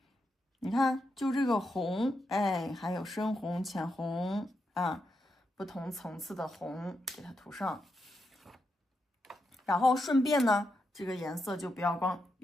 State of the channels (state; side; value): normal; both; correlation 0.84